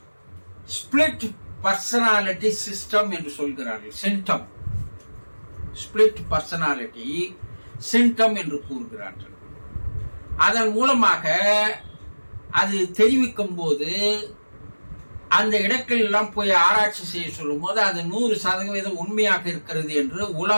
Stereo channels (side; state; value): both; inverted; correlation -1.00